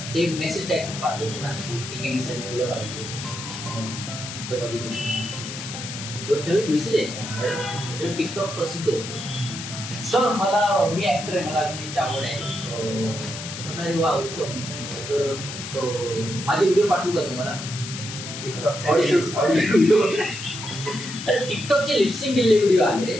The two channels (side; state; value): left; noise; hiss, 9 dB below the sound